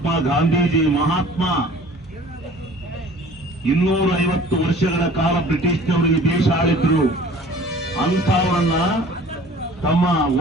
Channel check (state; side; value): normal; both; correlation 0.48